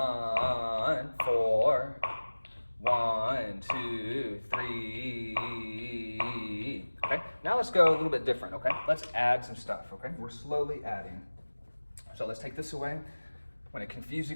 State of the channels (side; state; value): both; inverted; correlation -1.00